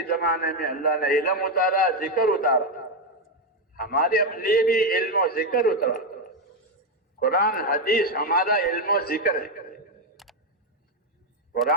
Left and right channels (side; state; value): both; normal; correlation 0.06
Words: زمانے میں اللہ نے علم اتارا، ذکر اتارا، ہمارے لیے بھی علم و ذکر اترا۔ قرآن حدیث ہمارا علم و ذکر ہے،